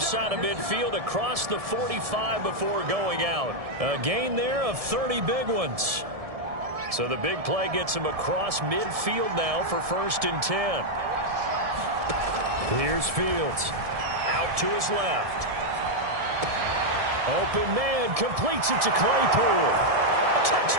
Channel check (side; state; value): left; late; 1.7 ms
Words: of midfield across the 45 before going out. A gain there of 30 big ones. So the big play gets him across midfield now for 1st and 10. Here's Fields. Out to his left. Open man completes it to Claypool.